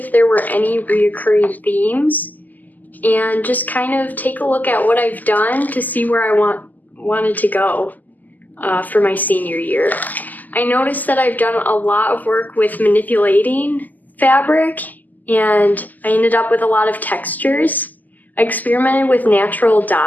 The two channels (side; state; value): right; late; 0.083 ms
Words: there were any reoccurring themes and just kind of take a look at what I've done to see where I wanted to go for my senior year. I noticed that I've done a lot of work with manipulating fabric, and I ended up with a lot of textures. I experimented with natural